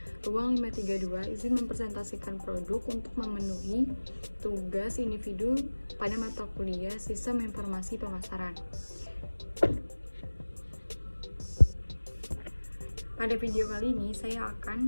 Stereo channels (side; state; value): both; inverted; correlation -1.00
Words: ruang 532, izin mempresentasikan produk untuk memenuhi tugas individu pada mata kuliah Sistem Informasi Pemasaran. Pada video kali ini saya